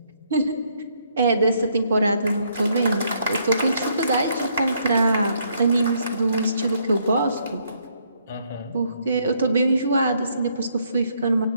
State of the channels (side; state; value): both; inverted; correlation -0.70